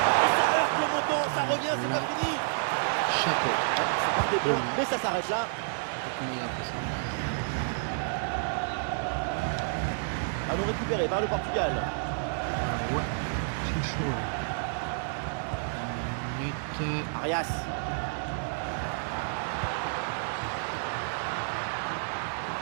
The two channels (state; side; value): silent; left; digital silence